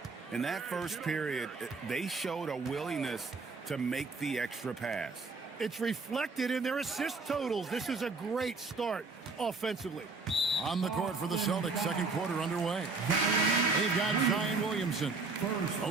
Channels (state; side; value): quieter; left; 4.0 dB